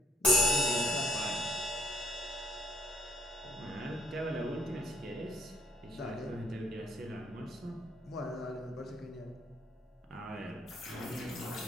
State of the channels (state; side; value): normal; both; correlation 0.65